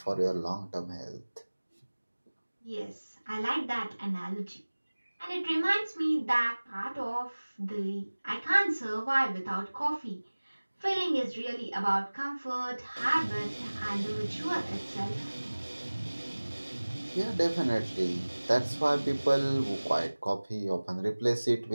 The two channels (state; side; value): inverted; both; correlation -1.00